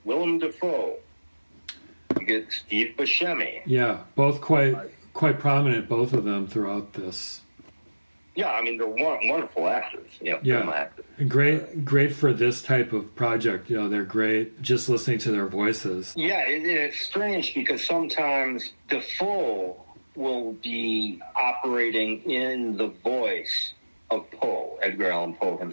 Willem Dafoe. You get Steve Buscemi. Yeah, both quite prominent, both of them, throughout this. Yeah, I mean, they're wonderful actors. Film actors. Great for this type of project. They're great just listening to their voices. Yeah, it's strange because sometimes Dafoe will be operating in the voice of Poe, Edgar Allan Poe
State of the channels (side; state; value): both; inverted; correlation -1.00